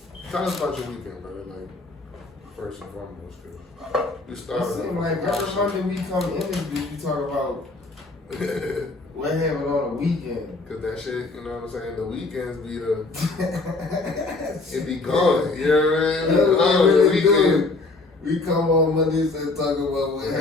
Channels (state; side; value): quieter; right; 3.4 dB